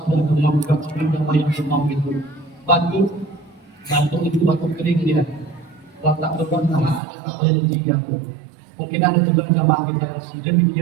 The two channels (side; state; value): left; drops out; at 7.0 s